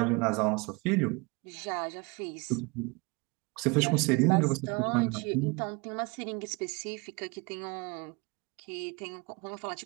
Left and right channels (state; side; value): quieter; left; 28.6 dB